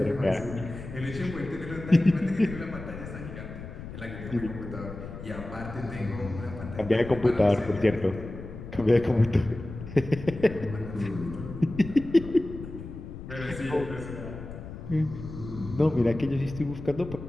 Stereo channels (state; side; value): noise; left; rumble, 11 dB below the sound